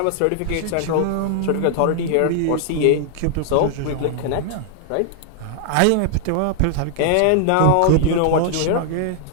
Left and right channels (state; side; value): different; both; correlation -0.01